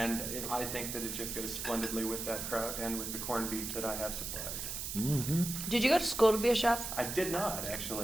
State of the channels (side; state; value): right; noise; hiss, 5 dB below the sound